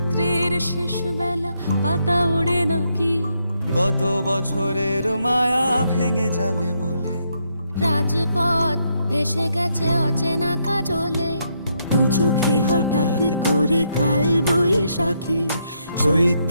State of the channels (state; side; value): inverted; both; correlation -0.77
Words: শেষ বেলা পাতা ওড়ে নাকি, গত বছরের মায়া ভেঙে যাবে বলে রাজপথ ভেসে গেছে অচেনা কাজলে। দু চোখে হঠাৎ করে কাল বৈশাখী,